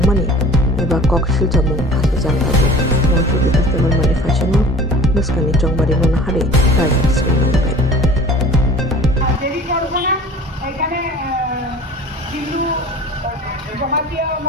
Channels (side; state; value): both; normal; correlation 0.44